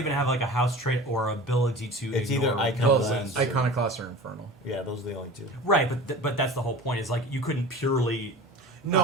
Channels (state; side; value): normal; both; correlation 0.37